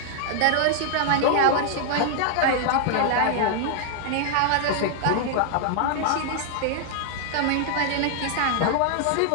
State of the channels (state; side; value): different; both; correlation 0.00